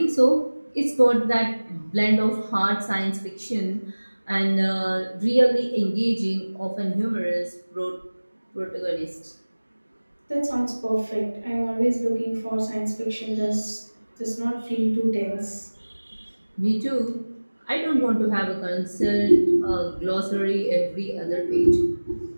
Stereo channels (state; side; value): inverted; both; correlation -1.00